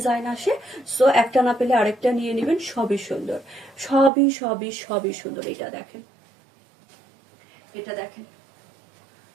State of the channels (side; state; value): left; drops out; at 4.1 s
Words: আসে, সো একটা না পেলে আরেকটা নিয়ে নেবেন, সবই সুন্দর, সবই সবই সবই সুন্দর। এটা দেখেন, এটা দেখেন